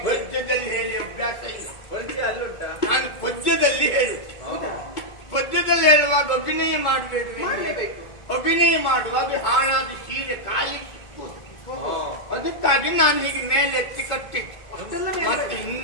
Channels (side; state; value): right; late; 2.3 ms